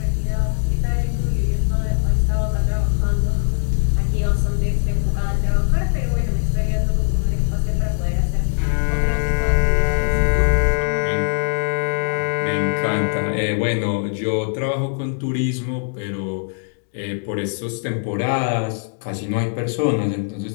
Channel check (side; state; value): right; silent; digital silence